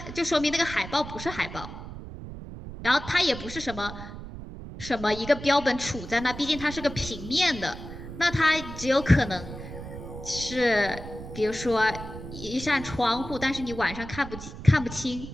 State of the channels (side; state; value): right; noise; rumble, 11 dB below the sound